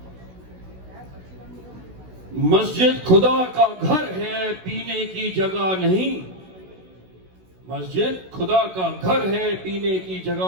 مسجد خدا کا گھر ہے پینے کی جگہ نہیں, مسجد خدا کا گھر ہے پینے کی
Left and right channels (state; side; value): late; left; 16 ms